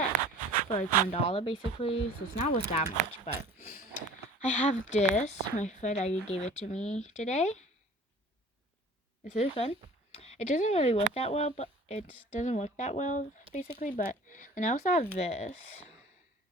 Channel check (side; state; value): both; normal; correlation 0.46